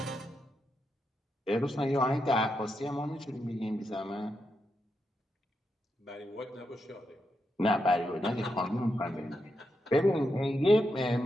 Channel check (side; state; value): both; normal; correlation 0.84